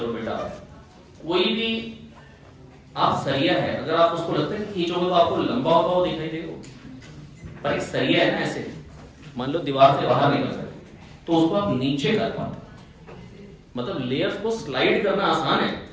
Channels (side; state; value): both; identical; correlation 1.00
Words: बेटा, कोई भी आप सरिया है, अगर आप उसको लगता है कि खींचोगे तो आपको लंबा होता हुआ दिखाई देगा, पर एक सरिया है ना ऐसे, मान लो दीवार से बाहर निकल सकते तो उसको आप नीचे कर पाते। मतलब लेयर्स को स्लाइड करना आसान है,